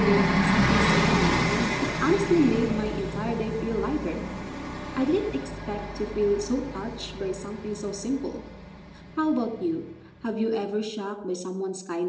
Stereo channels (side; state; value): both; identical; correlation 1.00